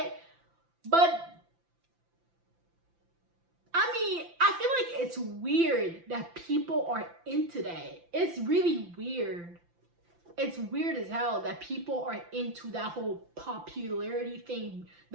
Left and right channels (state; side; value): late; left; 5.9 ms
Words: But I mean, I feel like it's weird that people are into that. It's really weird. It's weird as hell that people are into that whole popularity thing,